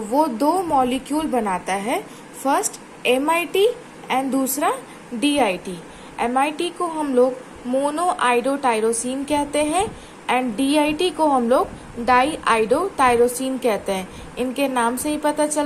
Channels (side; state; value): both; identical; correlation 1.00